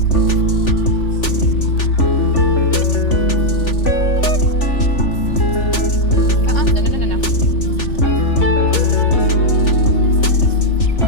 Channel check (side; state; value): right; late; 3.4 ms